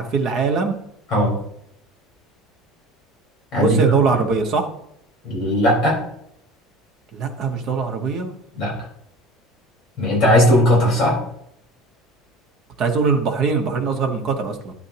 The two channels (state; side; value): normal; both; correlation 0.39